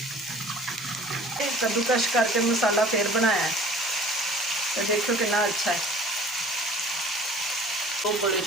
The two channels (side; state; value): both; normal; correlation 0.48